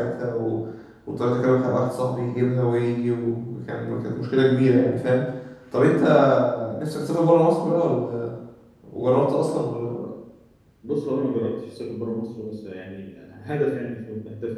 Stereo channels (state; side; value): identical; both; correlation 1.00